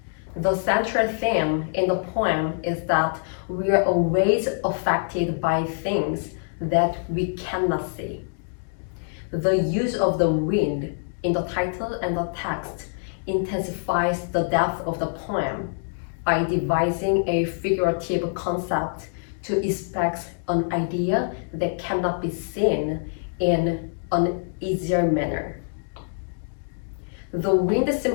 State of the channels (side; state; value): right; silent; digital silence